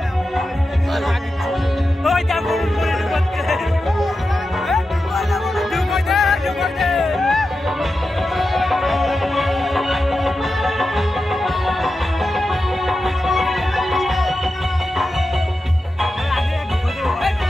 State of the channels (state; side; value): normal; both; correlation 0.91